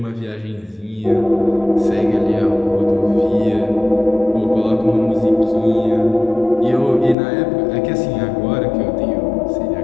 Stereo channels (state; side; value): drops out; right; at 7.2 s